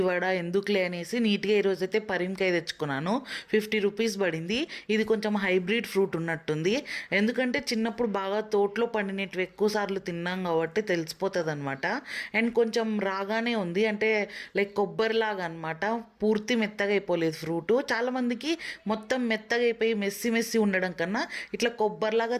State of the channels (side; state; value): both; identical; correlation 1.00